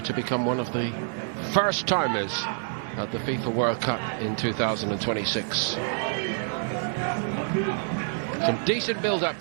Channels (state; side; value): silent; left; digital silence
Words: to become one of the first timers at the FIFA World Cup in 2026. Some decent build-up